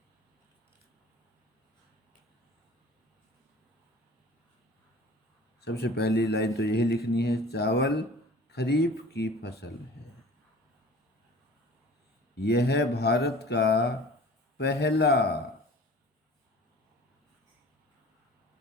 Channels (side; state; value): both; normal; correlation 0.44